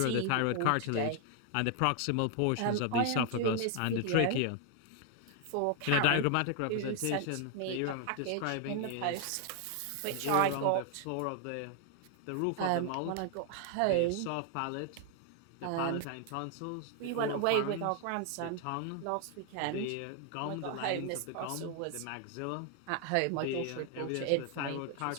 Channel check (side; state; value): both; different; correlation 0.00